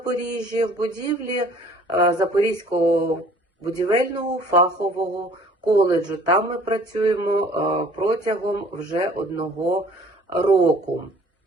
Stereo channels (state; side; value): normal; both; correlation 0.53